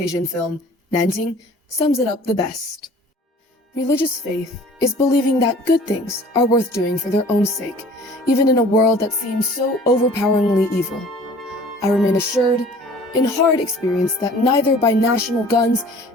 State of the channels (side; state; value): both; normal; correlation 0.49